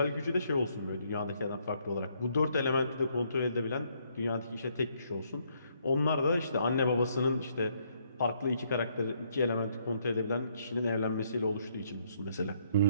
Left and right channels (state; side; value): inverted; both; correlation -0.71